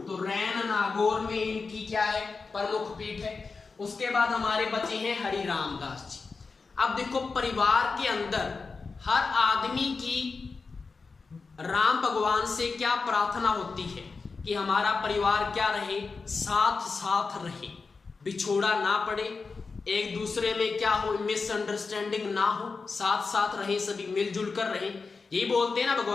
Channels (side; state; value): right; quieter; 4.5 dB